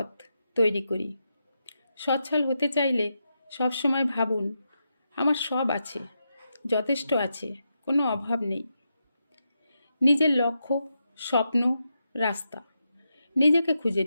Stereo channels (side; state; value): both; inverted; correlation -0.85